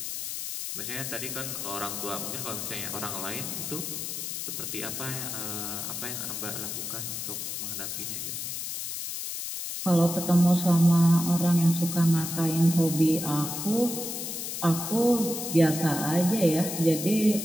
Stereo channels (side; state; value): left; noise; hiss, 5 dB below the sound